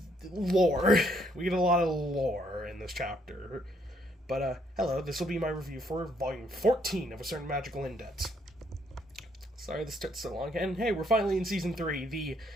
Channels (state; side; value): normal; both; correlation 0.69